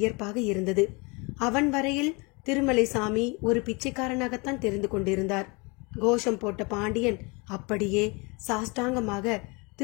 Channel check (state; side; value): quieter; right; 28.7 dB